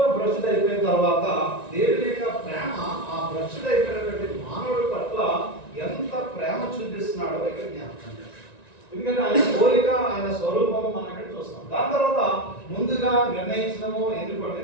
భ్రష్టు అయిపోయిన తర్వాత దేవుని యొక్క ప్రేమ ఆ భ్రష్టు అయిపోయినటువంటి మానవుడి పట్ల ఎంత ప్రేమ చూపిస్తున్నాడో ఇక్కడ జ్ఞాపకం చేస్తాం. ఎందుకంటే ఆయన పోలిక, ఆయన స్వరూపం మనం ఇక్కడ చూస్తాం. దాని తర్వాత ముందుగా నిర్ణయించడము, ఎన్నుకోవడం.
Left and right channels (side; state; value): right; late; 1.9 ms